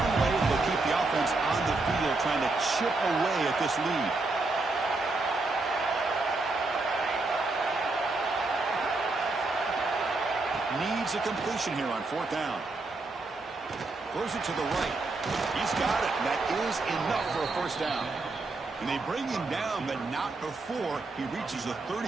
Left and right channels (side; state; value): left; quieter; 3.4 dB